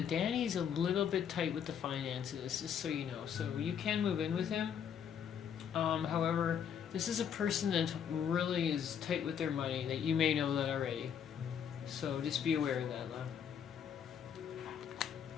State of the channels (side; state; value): right; quieter; 8.1 dB